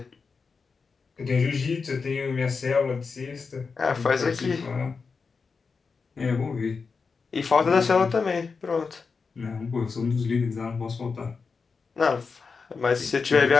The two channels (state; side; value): quieter; right; 4.9 dB